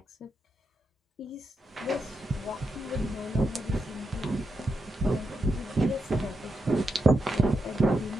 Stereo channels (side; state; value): both; normal; correlation 0.85